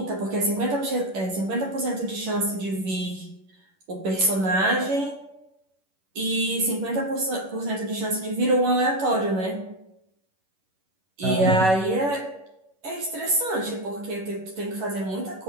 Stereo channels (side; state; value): left; late; 11 ms